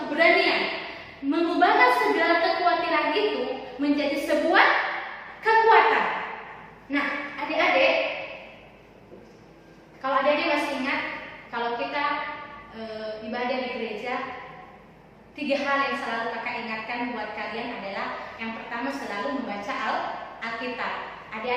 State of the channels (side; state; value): both; identical; correlation 1.00